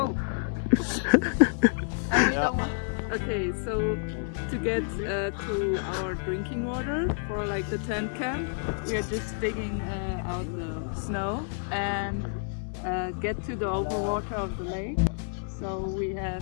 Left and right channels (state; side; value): silent; right; digital silence